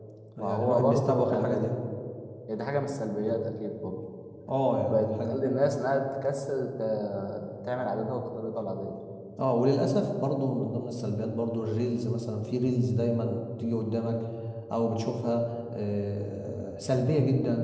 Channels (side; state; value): both; identical; correlation 1.00